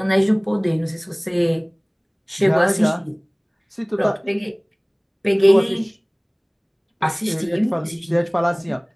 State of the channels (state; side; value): identical; both; correlation 1.00